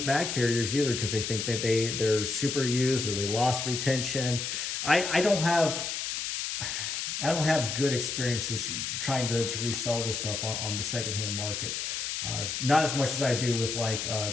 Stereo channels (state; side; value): noise; left; hiss, 3 dB below the sound